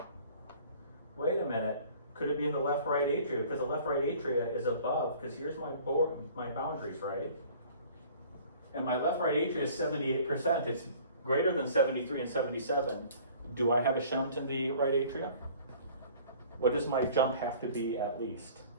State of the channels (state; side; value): inverted; both; correlation -0.50